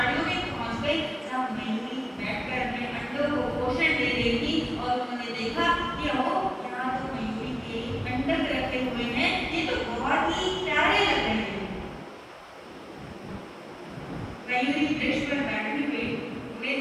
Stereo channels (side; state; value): both; identical; correlation 1.00